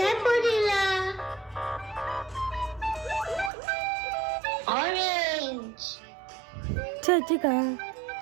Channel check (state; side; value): drops out; left; at 3.5 s